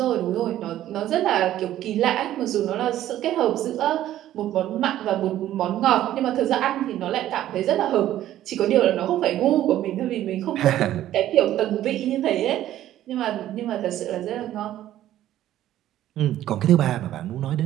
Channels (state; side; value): quieter; left; 13.0 dB